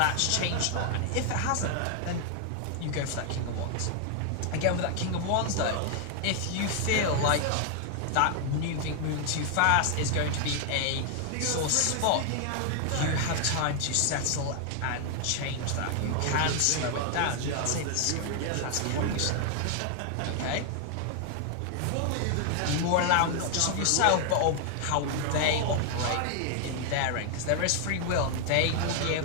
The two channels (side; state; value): both; different; correlation 0.00